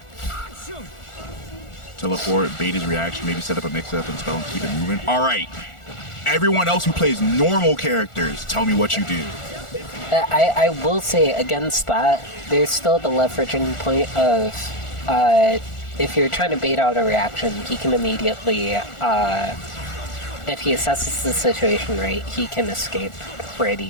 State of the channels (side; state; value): right; late; 1.4 ms